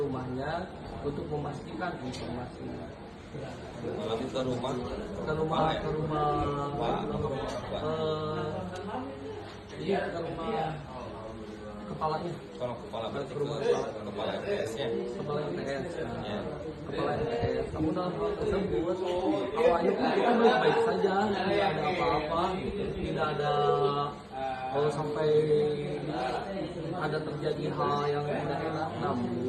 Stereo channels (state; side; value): identical; both; correlation 1.00